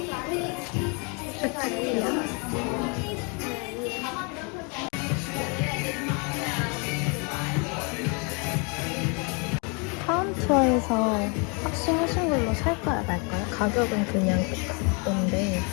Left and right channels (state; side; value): quieter; right; 34.1 dB